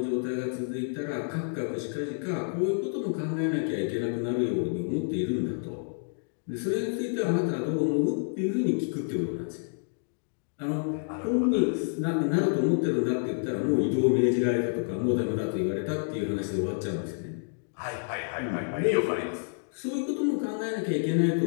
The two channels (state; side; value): silent; right; digital silence